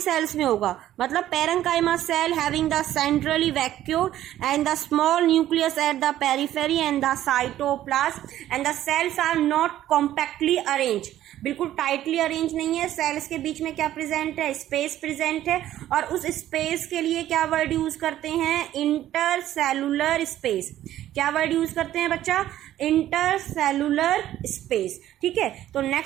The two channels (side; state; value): left; quieter; 13.0 dB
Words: में होगा। मतलब parenchyma cell having the centrally vacuole and the small nucleus at the periphery and the cytoplasm and the cells are not compactly arrange, बिल्कुल टाइटली अरेंज नहीं है। सेल्स के बीच में क्या प्रेजेंट है? स्पेस प्रेजेंट है। और उस स्पेस के लिए क्या वर्ड यूज करते हैं? Intercellular space. क्या वर्ड यूज करते हैं बच्चा? Intercellular space. ठीक है, तो